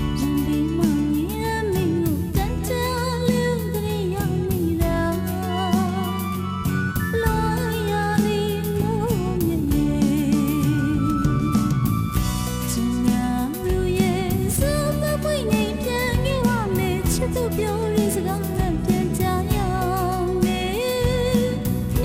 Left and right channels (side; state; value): both; identical; correlation 1.00